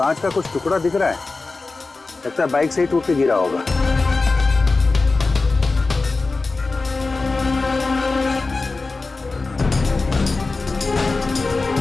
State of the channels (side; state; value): right; quieter; 3.7 dB